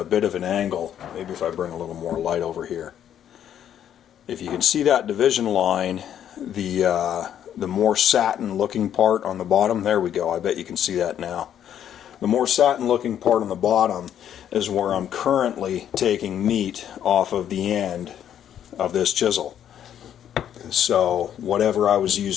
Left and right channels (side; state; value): right; quieter; 10.0 dB